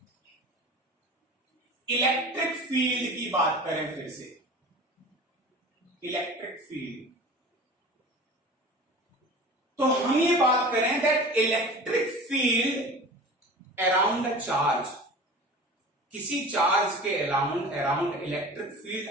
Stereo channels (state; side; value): normal; both; correlation 0.38